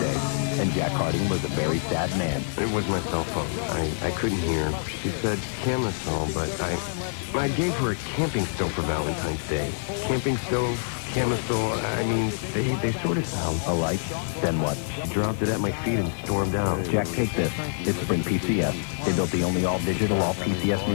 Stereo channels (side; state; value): right; silent; digital silence